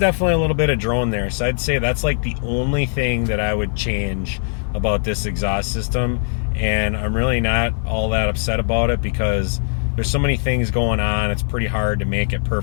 a little bit of drone there. So I'd say that's like the only thing that I would change about this exhaust system, and I'm really not all that upset about it, because there's so many things going on. It's pretty hard to make it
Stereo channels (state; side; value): silent; right; digital silence